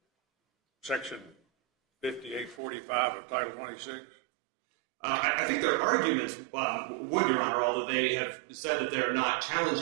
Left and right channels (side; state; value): left; drops out; at 2.6 s